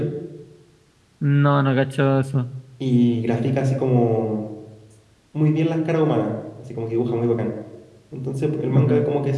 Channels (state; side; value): identical; both; correlation 1.00